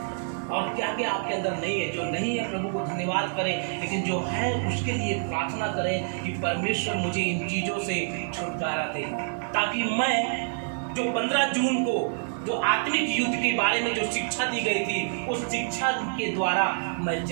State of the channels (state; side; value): silent; left; digital silence